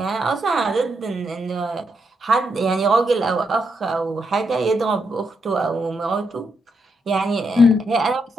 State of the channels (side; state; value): both; normal; correlation 0.80